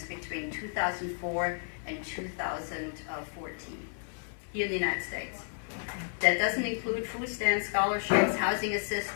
between 2004 and 2014 here in the United States. That doesn't include food stamps, scholarships, housing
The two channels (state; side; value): silent; right; 56 dB below the other